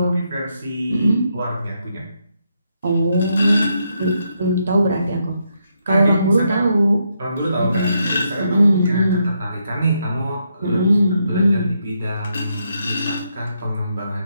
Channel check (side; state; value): both; inverted; correlation -0.79